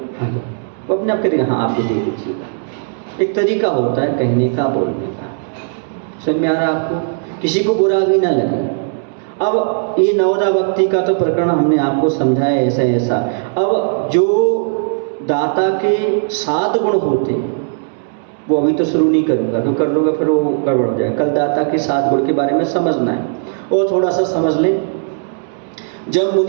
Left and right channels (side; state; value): left; silent; 66 dB below the other